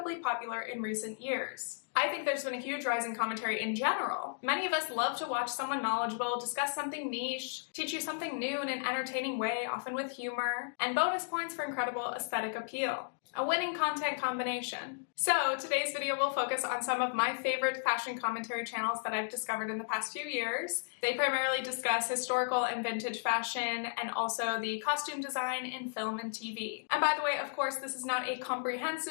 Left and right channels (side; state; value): right; silent; digital silence